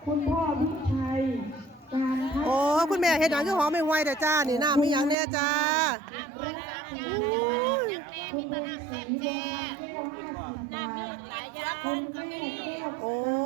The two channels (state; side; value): drops out; left; at 5.2 s